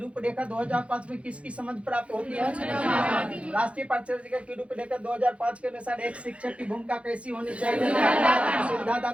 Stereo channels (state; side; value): late; left; 0.062 ms